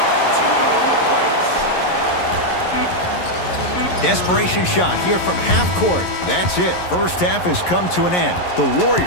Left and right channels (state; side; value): late; right; 11 ms